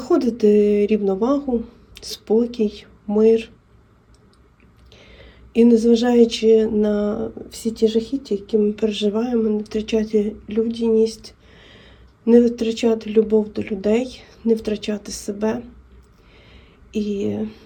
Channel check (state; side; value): identical; both; correlation 1.00